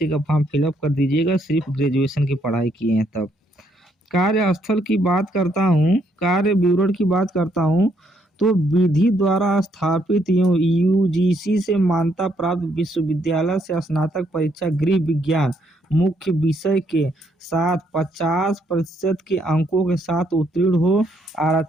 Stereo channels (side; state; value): both; normal; correlation 0.72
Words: का फॉर्म फिलअप कर दीजिएगा, सिर्फ ग्रेजुएशन की पढ़ाई किए हैं तब। कार्यस्थल की बात करता हूँ, कार्य विवरण की बात करता हूँ तो विधि द्वारा स्थापित यूजीसी से मान्यता प्राप्त विश्वविद्यालय से स्नातक परीक्षा गृह विज्ञान मुख्य विषय के साथ 50% के अंकों के साथ उत्तीर्ण हो।